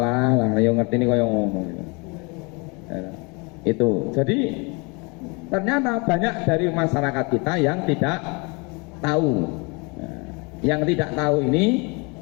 lah yo ngerti ini koyo ngomong. Itu. Jadi ternyata banyak dari masyarakat kita yang tidak tahu. Yang tidak tahu ini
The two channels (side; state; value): right; quieter; 30.1 dB